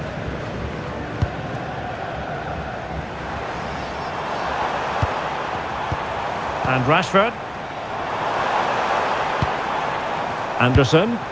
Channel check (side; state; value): left; noise; rumble, 25 dB below the sound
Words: And Rashford. Anderson.